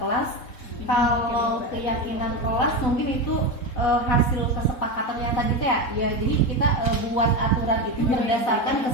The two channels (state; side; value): late; right; 4.0 ms